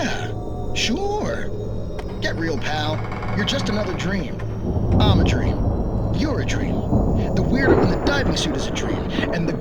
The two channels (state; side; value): identical; both; correlation 1.00